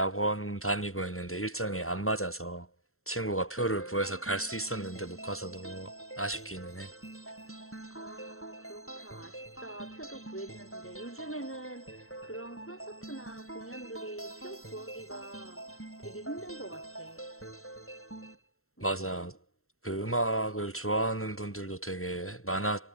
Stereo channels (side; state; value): right; late; 0.62 ms